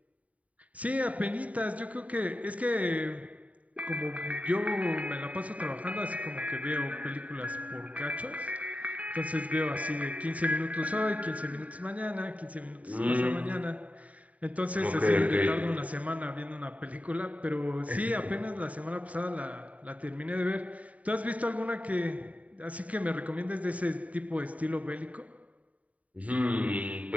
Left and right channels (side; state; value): left; late; 0.069 ms